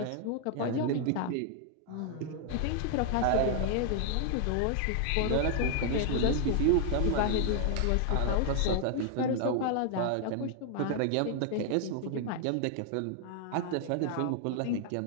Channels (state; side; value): different; both; correlation 0.00